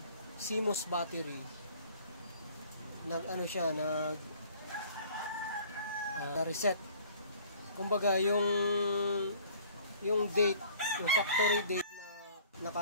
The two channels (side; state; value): both; inverted; correlation -0.52